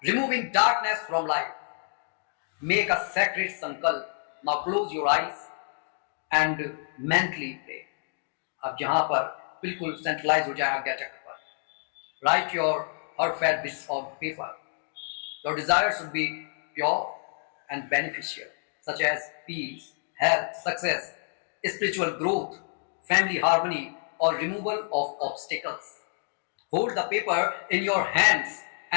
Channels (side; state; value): right; silent; 59 dB below the other